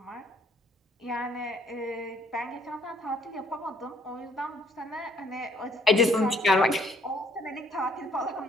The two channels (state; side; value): normal; both; correlation 0.64